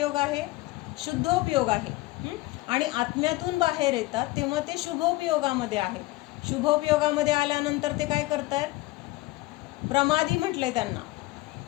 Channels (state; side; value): quieter; right; 20.0 dB